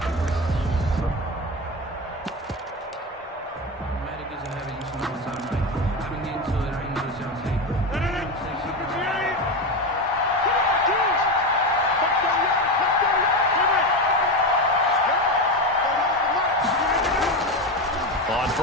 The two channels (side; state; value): both; normal; correlation 0.17